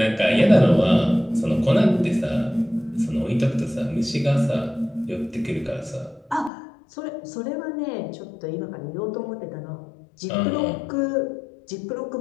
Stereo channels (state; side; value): drops out; right; at 6.5 s